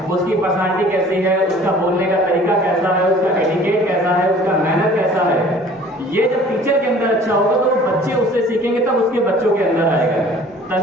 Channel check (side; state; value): both; normal; correlation 0.50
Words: उसकी पर्सनालिटी कैसी है, उसका बोलने का तरीका कैसा है, उसका एटिकेट कैसा है, उसका मैनर कैसा है, ये जब टीचर के अंदर अच्छा होगा तो बच्चे उससे सीखेंगे, तब उसके बच्चों के अंदर आएगा,